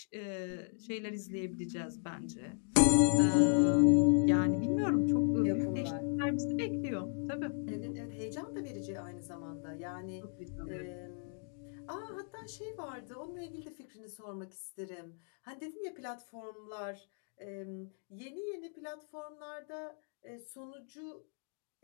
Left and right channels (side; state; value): right; silent; 54 dB below the other